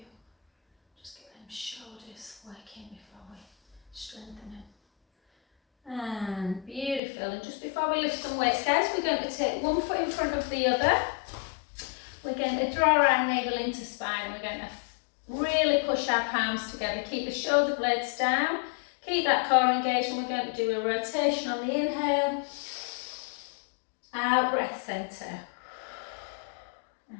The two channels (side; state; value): right; drops out; at 7.0 s